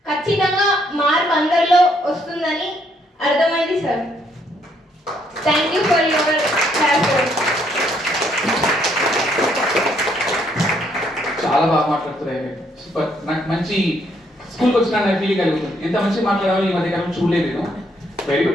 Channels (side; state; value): both; normal; correlation 0.70